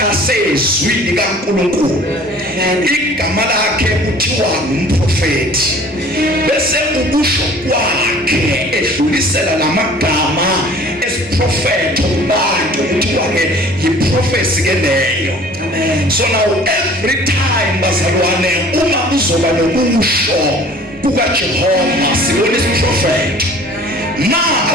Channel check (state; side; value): normal; both; correlation 0.49